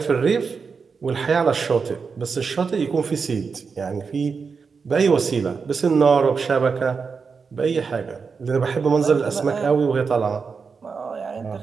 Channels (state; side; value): quieter; left; 5.3 dB